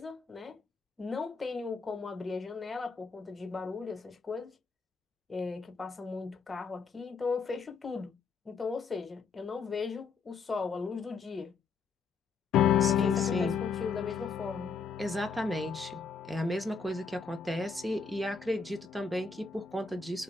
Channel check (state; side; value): quieter; right; 5.0 dB